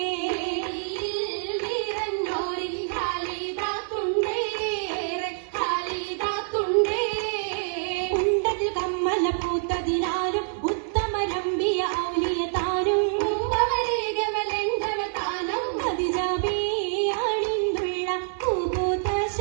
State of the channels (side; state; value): left; silent; digital silence